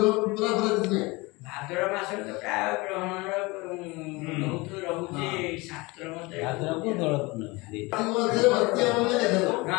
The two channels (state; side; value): quieter; right; 24.1 dB